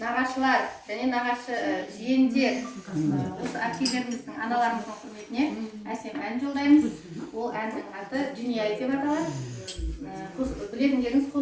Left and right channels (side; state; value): both; identical; correlation 1.00